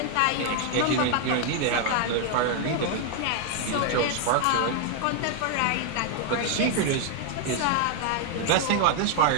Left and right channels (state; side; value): different; both; correlation 0.00